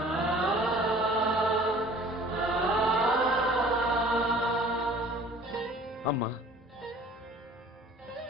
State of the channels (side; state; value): both; normal; correlation 0.50